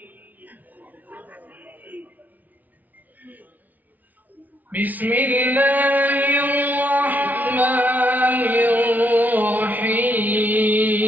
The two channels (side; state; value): left; late; 0.079 ms